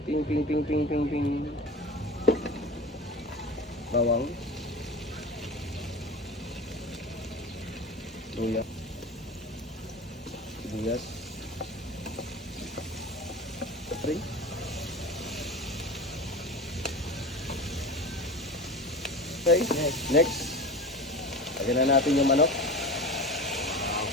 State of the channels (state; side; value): normal; both; correlation 0.32